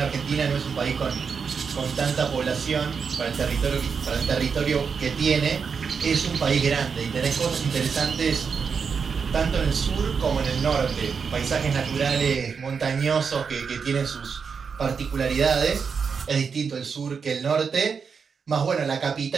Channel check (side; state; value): left; quieter; 5.9 dB